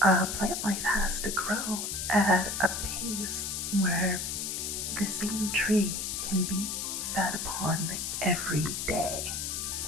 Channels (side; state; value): left; noise; hiss, 3 dB below the sound